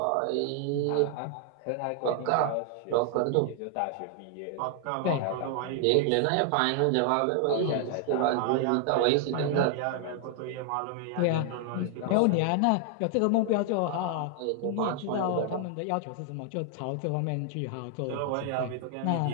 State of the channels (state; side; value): different; both; correlation 0.00